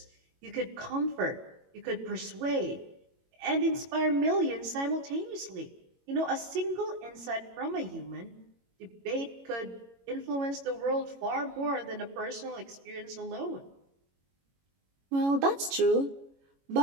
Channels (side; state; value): left; late; 22 ms